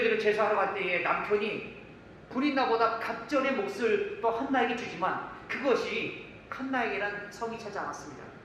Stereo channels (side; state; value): both; identical; correlation 1.00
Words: 제사하러 갈 때에 남편이 브린나보다 갑절의 몫을 또 한나에게 주지만 그것이 한나에게는 성이 차지 않았습니다.